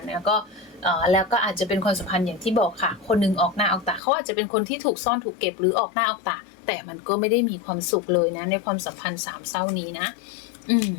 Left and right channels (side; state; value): right; drops out; at 4.0 s